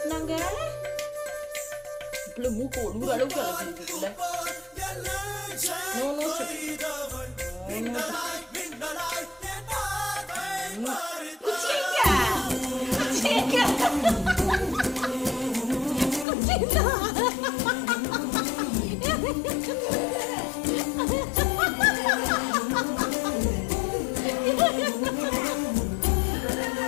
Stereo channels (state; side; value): drops out; right; at 16.2 s